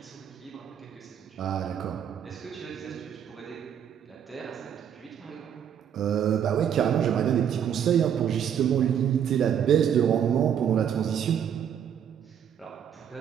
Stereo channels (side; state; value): left; quieter; 8.8 dB